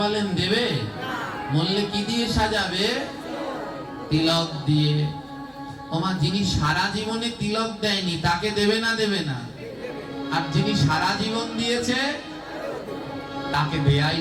বলেন, দেবে? মরলে কি দিয়ে সাজাবে? তিলক দিয়ে। ওমা যিনি সারা জীবনে তিলক দেয়নি তাকে দেবে না দেবে না? আর যিনি সারা জীবন দিয়েছে তাকে দেয়াই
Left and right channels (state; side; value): identical; both; correlation 1.00